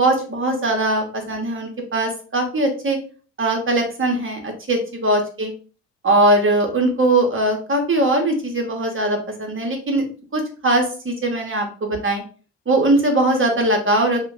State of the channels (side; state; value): both; normal; correlation 0.09